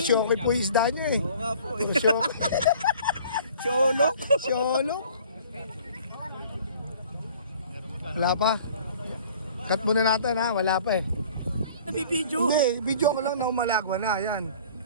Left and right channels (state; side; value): inverted; both; correlation -0.50